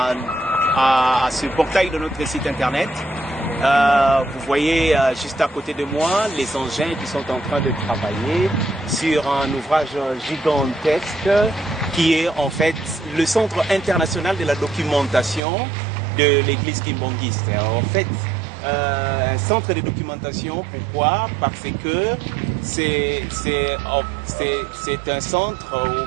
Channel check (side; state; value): left; drops out; at 15.4 s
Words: ce portail de notre site internet. Vous voyez juste à côté de moi les engins qui sont en train de travailler sur un ouvrage gigantesque qui est en fait le Centre international de la documentation de l'église kimbangiste. En fait, un centre de documentation, pourquoi? Parce que c'est un centre ou